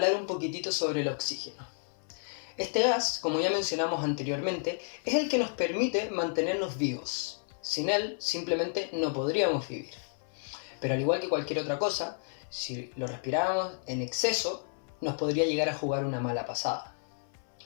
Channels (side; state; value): right; silent; 57 dB below the other